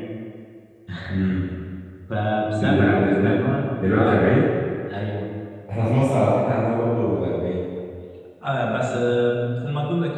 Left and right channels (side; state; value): both; identical; correlation 1.00